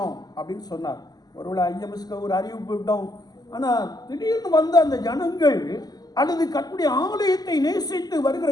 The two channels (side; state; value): right; late; 0.19 ms